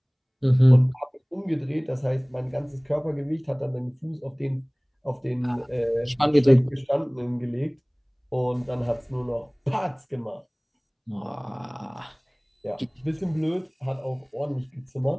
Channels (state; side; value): identical; both; correlation 1.00